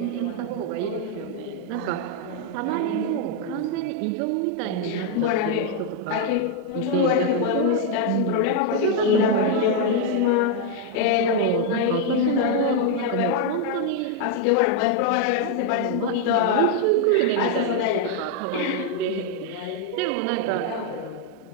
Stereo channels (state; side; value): different; both; correlation 0.01